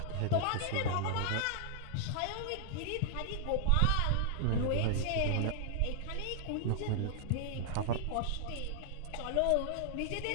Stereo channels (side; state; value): both; different; correlation -0.01